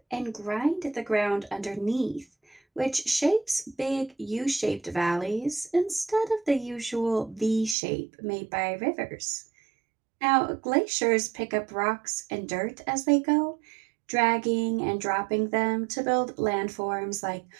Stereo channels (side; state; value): left; drops out; at 7.8 s